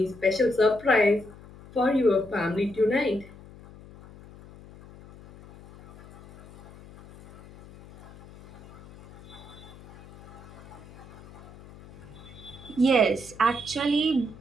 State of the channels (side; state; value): left; noise; hum, 19 dB below the sound